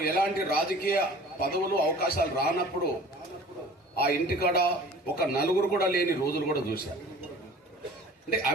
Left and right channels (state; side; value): normal; both; correlation 0.46